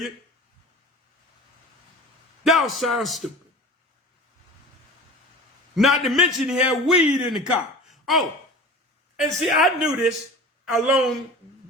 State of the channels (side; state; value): both; normal; correlation 0.37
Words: Y'all sound stupid. Not to mention he had weed in the car. Oh, and see, I knew this a long